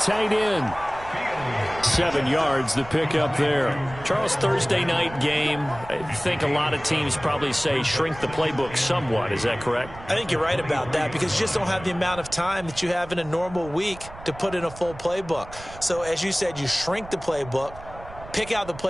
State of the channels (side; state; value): right; noise; rumble, 16 dB below the sound